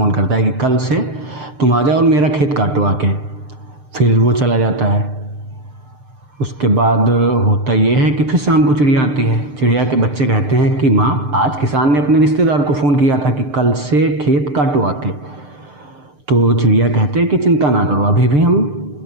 करता है कि कल से तुम आ जाओ और मेरा खेत काटो आके। फिर वो चला जाता है। उसके बाद होता ये है कि फिर शाम को चिड़िया आती है। चिड़िया के बच्चे कहते हैं कि माँ आज किसान ने अपने रिश्तेदार को फ़ोन किया था कि कल से खेत काटो आके। तो चिड़िया कहते हैं कि चिंता ना करो, अभी भी हम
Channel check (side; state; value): left; late; 6.8 ms